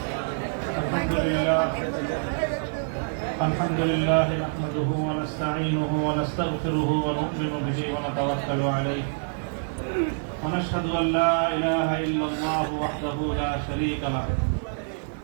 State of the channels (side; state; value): left; silent; digital silence